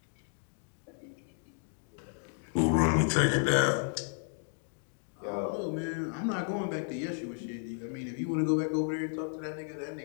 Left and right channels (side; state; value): right; silent; 56 dB below the other